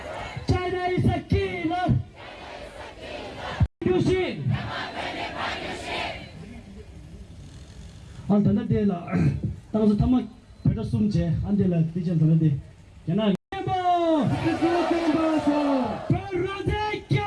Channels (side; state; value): both; identical; correlation 1.00